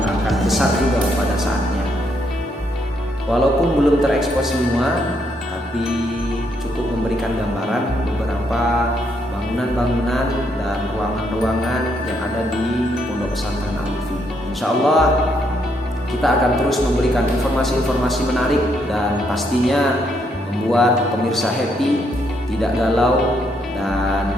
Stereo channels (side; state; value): both; normal; correlation 0.74